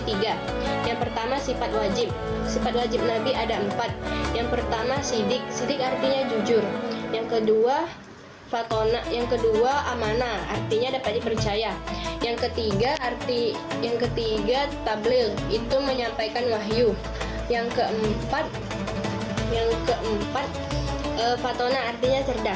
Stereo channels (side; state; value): both; identical; correlation 1.00